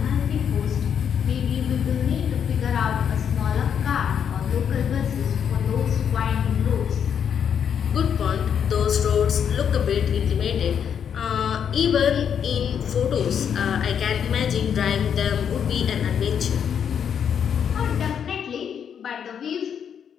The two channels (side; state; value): right; quieter; 8.0 dB